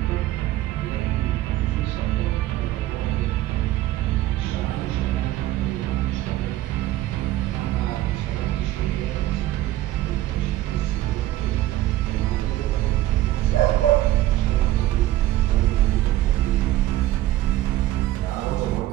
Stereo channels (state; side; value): quieter; left; 15.0 dB